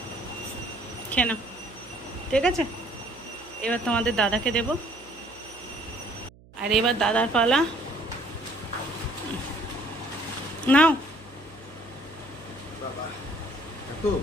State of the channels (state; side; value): noise; right; hum, 24 dB below the sound